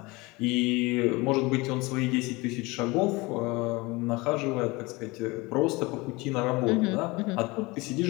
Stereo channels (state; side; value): quieter; right; 23.8 dB